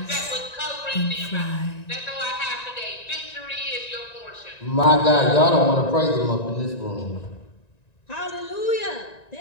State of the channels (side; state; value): right; late; 1.9 ms